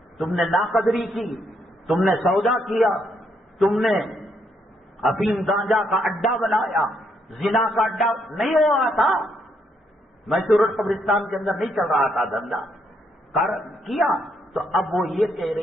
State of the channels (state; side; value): normal; both; correlation 0.75